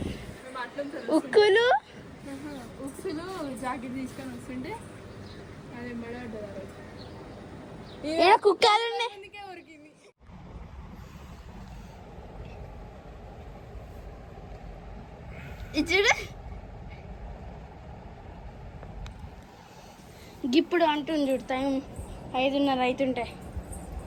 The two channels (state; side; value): identical; both; correlation 1.00